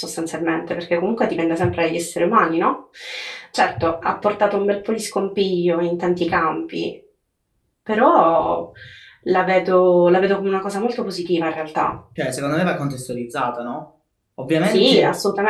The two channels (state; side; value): identical; both; correlation 1.00